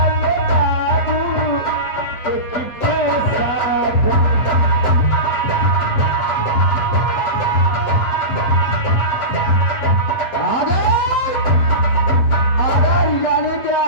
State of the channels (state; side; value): late; right; 8.1 ms